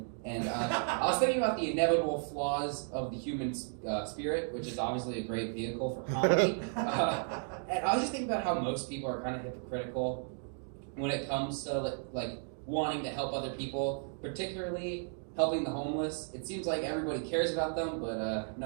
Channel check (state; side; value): silent; left; 55 dB below the other